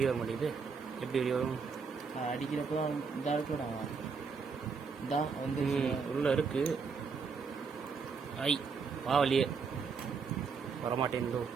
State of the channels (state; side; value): quieter; left; 5.3 dB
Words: வர மாட்டேங்குது. எப்படி வெளியே வரும்? அடிக்கிறப்போ இந்த இருக்குடா. இந்தா வந்து உள்ள இருக்கு. ஐ வா வெளியே வரமாட்டேங்குதோ.